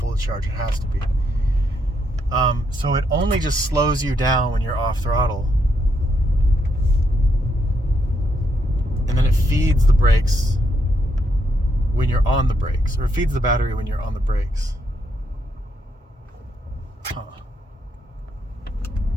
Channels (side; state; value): both; normal; correlation 0.77